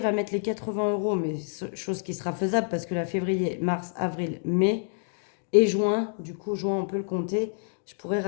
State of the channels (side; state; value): right; silent; digital silence